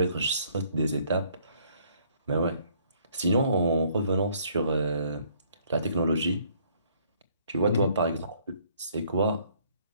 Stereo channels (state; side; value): inverted; both; correlation -0.63